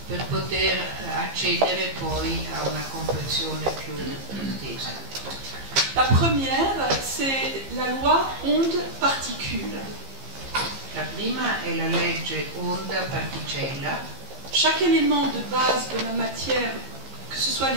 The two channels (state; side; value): late; left; 15 ms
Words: per poter accedere poi a una comprensione più estesa. La première, c'est la loi onde-particule. La prima è la legge onda-particella. Chaque élément de base de la matière, que ce soit